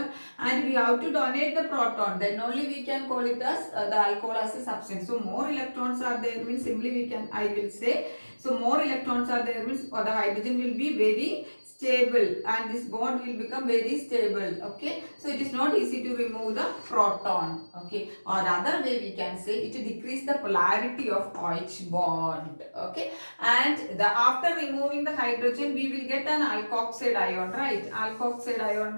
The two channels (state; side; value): inverted; both; correlation -1.00